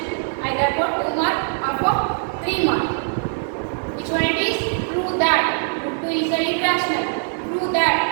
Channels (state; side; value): silent; left; 64 dB below the other